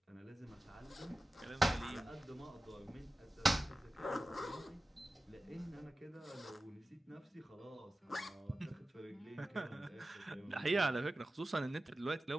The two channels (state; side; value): normal; both; correlation 0.94